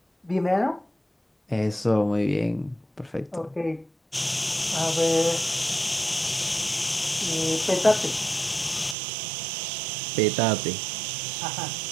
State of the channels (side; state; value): left; drops out; at 9.0 s